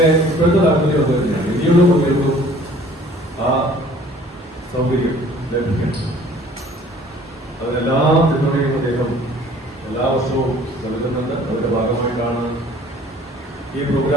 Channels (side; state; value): both; normal; correlation 0.53